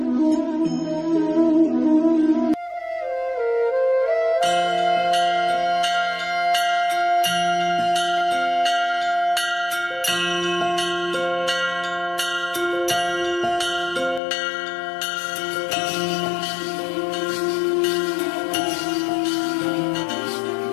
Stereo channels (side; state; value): right; drops out; at 14.2 s